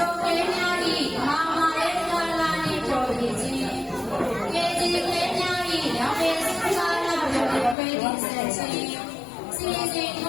ော်ကလေးများ၏မာမာရဲ့ကာလာနှင့်ပြောပြခြင်းကေဒီကလေးများ၏ရောင်ရည်စကားနာပြောပြပေးခြင်းစီစဉ်ဖ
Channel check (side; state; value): right; drops out; at 7.8 s